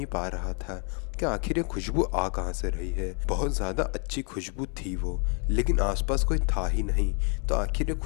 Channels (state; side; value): quieter; right; 39.7 dB